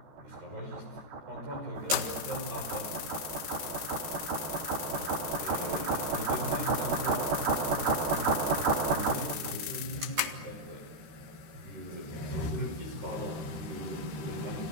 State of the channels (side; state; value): left; late; 13 ms